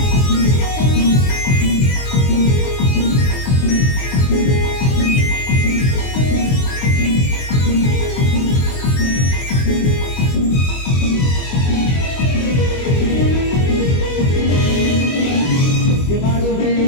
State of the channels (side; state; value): right; late; 23 ms